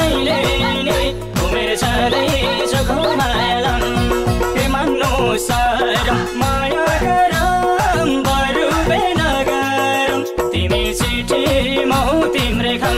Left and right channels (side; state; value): both; identical; correlation 1.00